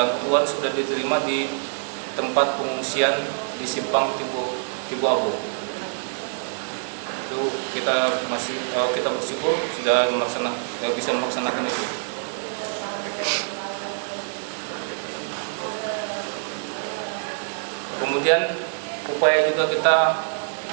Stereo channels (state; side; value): silent; left; digital silence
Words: sudah diterima di tempat pengungsian di Simpang Tibuabo. Itu kita bersyukur sudah bisa melaksanakan itu. Kemudian upaya juga kita